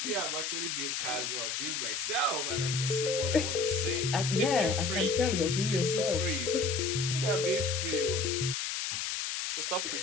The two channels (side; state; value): left; noise; hiss, 2 dB below the sound